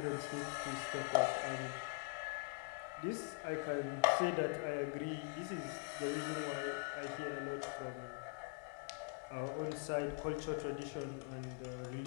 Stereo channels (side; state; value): right; quieter; 34.5 dB